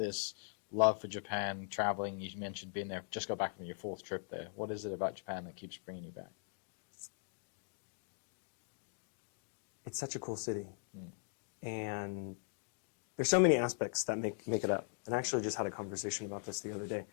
love for Japan, traveling? You mentioned being there. Just got back from your 4th trip there. What is it about Japan that keeps bringing you back? It's such a cool city. And there's so many aspects that make it up. And I actually just had a conversation about this the other day.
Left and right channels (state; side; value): silent; right; digital silence